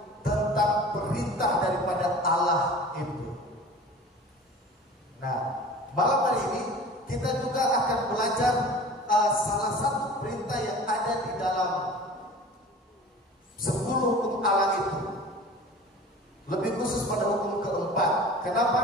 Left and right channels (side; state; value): both; normal; correlation 0.41